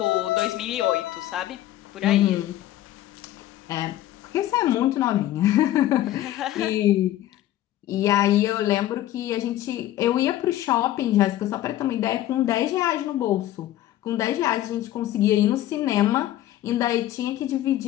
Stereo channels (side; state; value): right; quieter; 13.8 dB